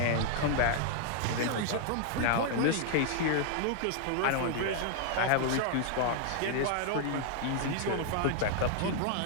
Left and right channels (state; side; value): different; both; correlation 0.00